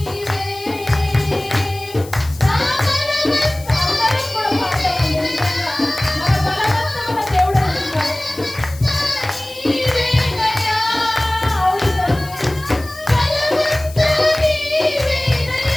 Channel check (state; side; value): noise; left; hiss, 18 dB below the sound